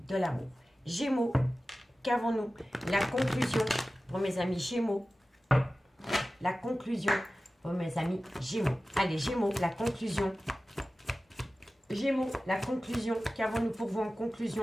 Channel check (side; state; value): both; normal; correlation 0.95